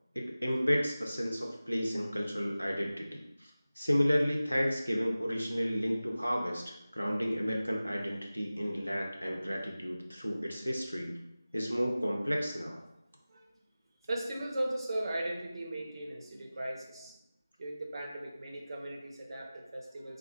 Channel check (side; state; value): both; inverted; correlation -0.97